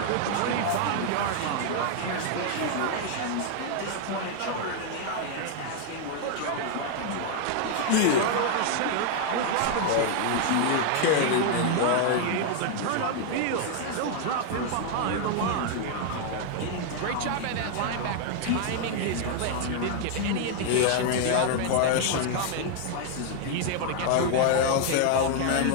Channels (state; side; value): different; both; correlation 0.00